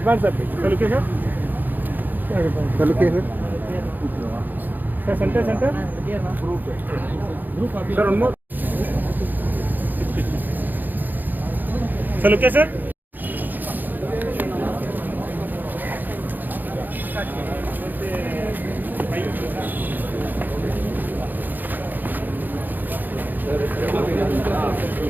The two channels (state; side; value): late; left; 0.087 ms